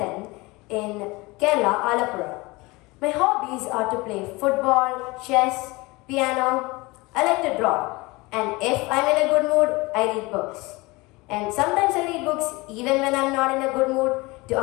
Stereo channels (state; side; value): quieter; right; 23.5 dB